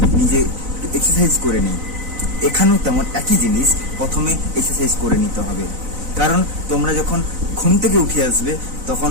নিজে এক্সারসাইজ করে নিই। এখানেও তেমন একই জিনিস, প্রথমে এক্সারসাইজ করে নিতে হবে। কারণ তোমরা যখন ঘুম থেকে উঠে আসবে তখন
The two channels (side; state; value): left; late; 4.0 ms